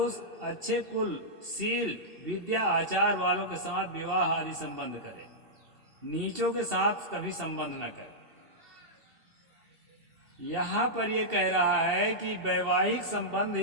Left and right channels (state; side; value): late; left; 2.7 ms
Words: अच्छे कुल, शील, विद्या, आचार वालों के साथ विवाह आदि संबंध करे, नीचों के साथ कभी संबंध न करे। यहाँ पर यह कह रहा है कि वैवाहिक संबंध